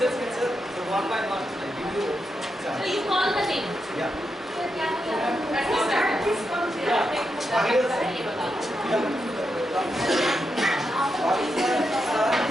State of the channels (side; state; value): both; normal; correlation 0.85